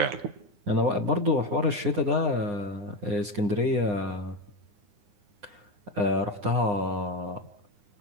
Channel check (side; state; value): left; late; 9.8 ms